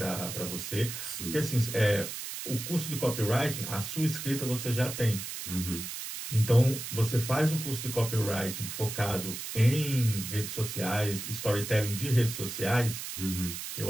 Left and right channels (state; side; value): noise; right; hiss, 7 dB below the sound